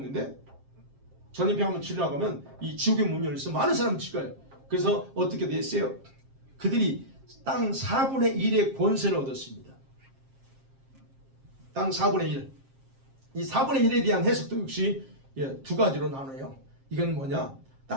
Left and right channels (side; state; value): left; late; 7.5 ms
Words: 전염병 한번 치료하고 가면 이 지옥의 문이 열려서 많은 사람이 죽어요. 그래서 어떻게 됐어요? 그들이 땅 4분의 1의 권세를 얻었습니다. 땅 4분의 1. 이 4분의 1에 대한 해석도 역시 두 가지로 나눠요. 이건 뭐냐?